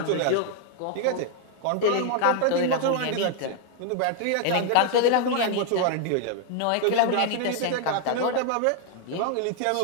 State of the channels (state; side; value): different; both; correlation 0.00